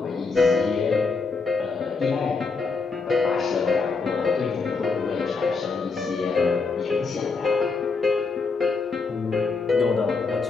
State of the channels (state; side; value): quieter; right; 4.5 dB